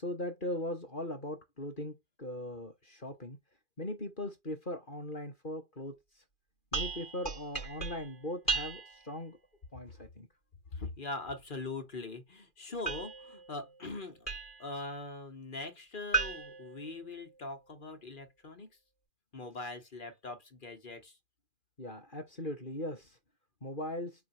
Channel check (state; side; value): late; right; 2.4 ms